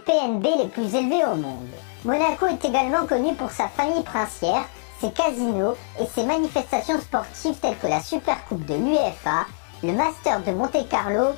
les plus élevés au monde. Monaco est également connu pour sa famille princière, ses casinos et ses manifestations sportives telles que la Supercoupe de l'UEFA, le Master de Monte-Carlo,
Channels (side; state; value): right; silent; digital silence